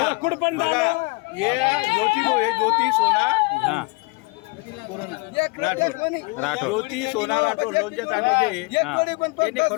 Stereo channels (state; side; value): quieter; right; 28.3 dB